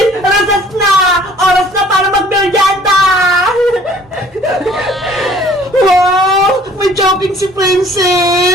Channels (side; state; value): both; normal; correlation 0.54